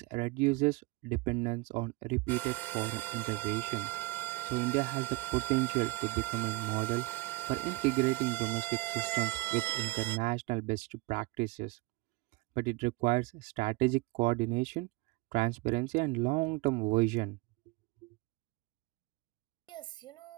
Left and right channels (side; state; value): left; quieter; 22.9 dB